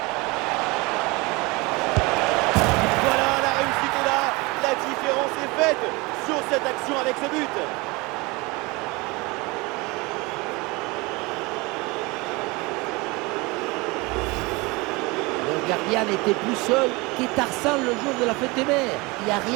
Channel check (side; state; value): left; quieter; 24.9 dB